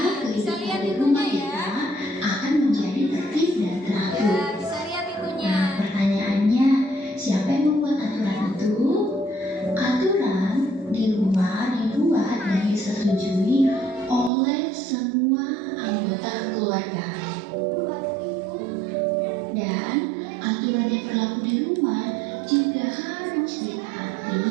kehidupan di rumah kita akan menjadi tertib dan teratur. Ya, bisa lihat itunya. Nah, pertanyaannya, siapa yang membuat aturan itu? Aturan di rumah dibuat dan disetujui oleh semua anggota keluarga. Dan aturan yang berlaku di rumah juga harus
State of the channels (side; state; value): left; drops out; at 14.3 s